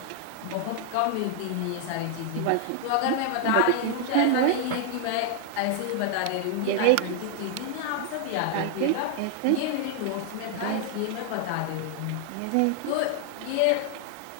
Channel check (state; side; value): different; both; correlation 0.00